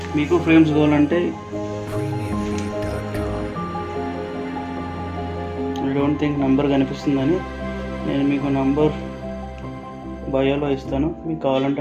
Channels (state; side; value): identical; both; correlation 1.00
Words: మీకు ఫ్రేమ్స్ కావాలంటే ఐ డోంట్ థింక్ నంబర్ కనిపిస్తుందని నేను మీకు నంబర్ బయోలో ఇస్తాను. మీకు